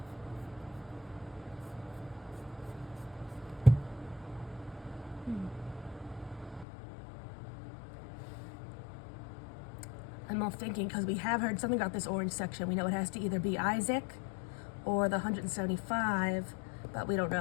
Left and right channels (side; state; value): right; drops out; at 6.7 s